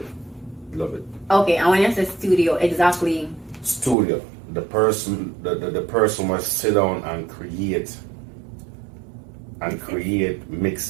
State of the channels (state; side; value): drops out; left; at 4.0 s